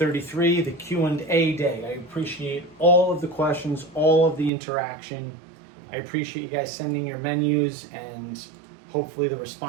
the Q&A day. I appreciate all of the questions, all of the interaction. I appreciate you guys sending your menus, and hopefully the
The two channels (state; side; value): drops out; left; at 4.5 s